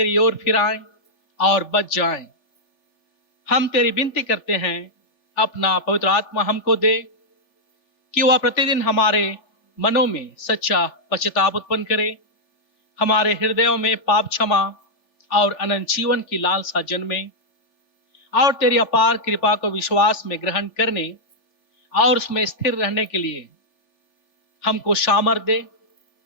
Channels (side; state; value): right; late; 3.4 ms